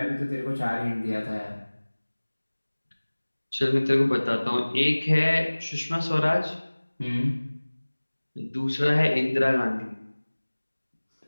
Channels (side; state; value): both; inverted; correlation -1.00